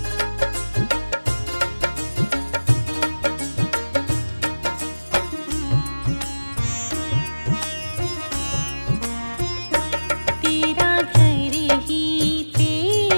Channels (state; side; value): inverted; both; correlation -1.00